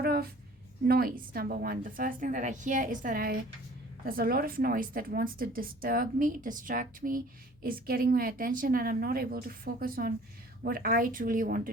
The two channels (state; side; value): noise; left; hum, 29 dB below the sound